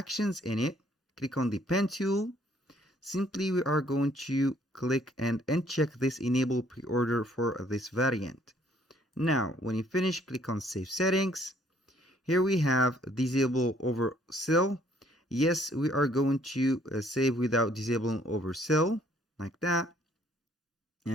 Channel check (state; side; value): normal; both; correlation 0.63